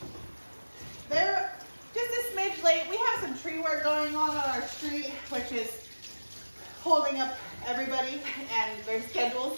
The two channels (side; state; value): both; inverted; correlation -1.00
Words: They're just a smidge late. We have some tree work going on our street, which is holding up everybody and their